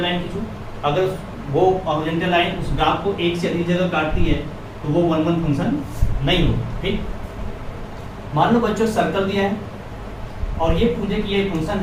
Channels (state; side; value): identical; both; correlation 1.00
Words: लाइन खींचो, अगर वो हॉरिजॉन्टल लाइन उस ग्राफ को एक से अधिक जगह काटती है तो वो 1 1 फंक्शन नहीं हो। ठीक, मान लो बच्चों सर्कल दिया है और ये पूछे कि ये फंक्शन